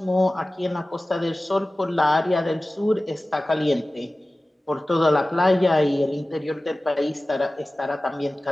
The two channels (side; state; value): both; normal; correlation 0.97